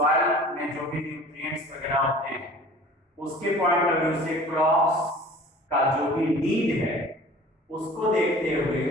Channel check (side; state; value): both; normal; correlation 0.45